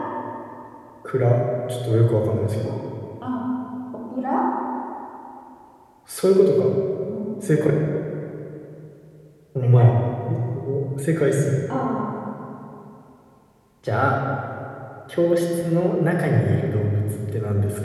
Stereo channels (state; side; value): identical; both; correlation 1.00